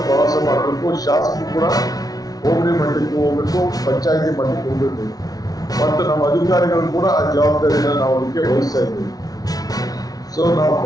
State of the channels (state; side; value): late; right; 0.18 ms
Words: ಪ್ರವಾಸ ಮಾಡಬೇಕು. ಶಾಸಕರು ಕೂಡ ಹೋಬಳಿ ಮಟ್ಟಕ್ಕೆ ಹೋಗ್ಬೇಕು, ಪಂಚಾಯತಿ ಮಟ್ಟಕ್ಕೆ ಹೋಗ್ಬೇಕು ಮತ್ತು ನಮ್ಮ ಅಧಿಕಾರಿಗಳು ಕೂಡ ಆ ಜವಾಬ್ದಾರಿಯನ್ನು ನಾವು ಅದಕ್ಕೆ ವಹಿಸ್ತಾ ಇದ್ದೀವಿ. ಸೊ ನಾವು